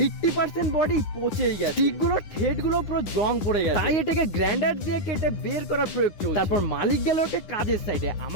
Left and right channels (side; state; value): right; late; 10 ms